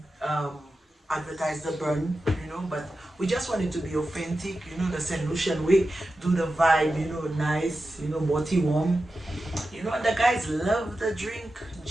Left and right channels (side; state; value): both; normal; correlation 0.92